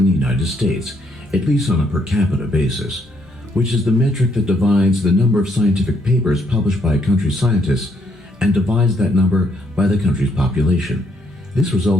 the United States, at least on a per capita basis, which is the metric that divides the number of scientific papers published by a country's scientists and divides that number by the country's population. This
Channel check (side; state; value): both; normal; correlation 0.72